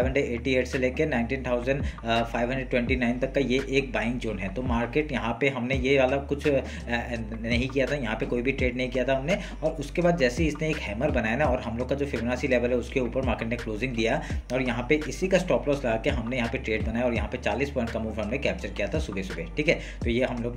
से लेकर 19,529 तक का ये एक बाइंग जोन है। तो मार्केट यहाँ पे हमने ये वाला कुछ नहीं किया था, यहाँ पे कोई भी ट्रेड नहीं किया था हमने। और उसके बाद जैसे ही इसने एक हैमर बनाया ना, और हम लोग का जो फिबोनाची लेवल है उसके ऊपर मार्केट ने क्लोजिंग दिया, और यहाँ पे इसी का स्टॉप लॉस लगा के हमने यहाँ पे ट्रेड बनाया, और यहाँ पे 40 पॉइंट का मूव हमने कैप्चर किया था सुबह सुबह। ठीक है, तो ये हम लोग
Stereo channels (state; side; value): identical; both; correlation 1.00